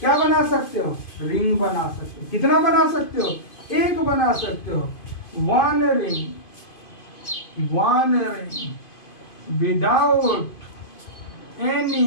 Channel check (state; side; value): late; right; 2.5 ms